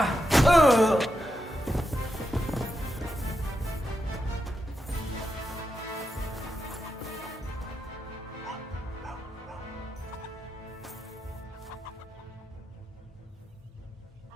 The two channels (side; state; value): both; normal; correlation 0.86